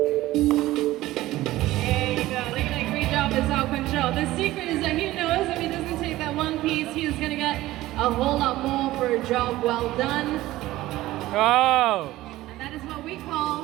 There you go, look at that great job with self-control. The secret is that he knows if he doesn't take that one piece, he is gonna get a whole lot more for a job well done. Oh! And that is what we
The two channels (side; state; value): left; quieter; 16.6 dB